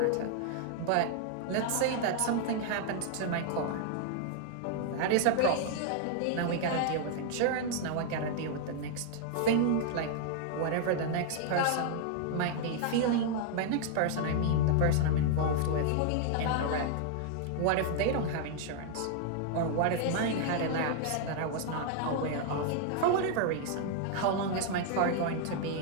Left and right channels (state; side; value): different; both; correlation -0.01